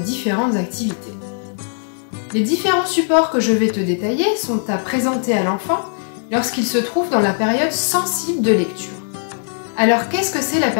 activités. Les différents supports que je vais te détailler sont à présenter à l'enfant lorsqu'il se trouve dans la période sensible de lecture. Alors qu'est-ce que c'est la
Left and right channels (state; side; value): silent; right; digital silence